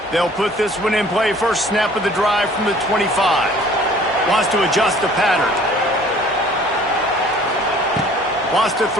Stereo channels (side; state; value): both; normal; correlation 0.52